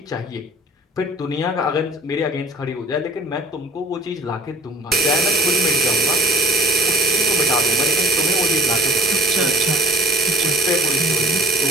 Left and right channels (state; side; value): normal; both; correlation 0.52